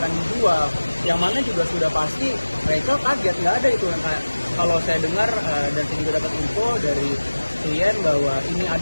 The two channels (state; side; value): inverted; both; correlation -1.00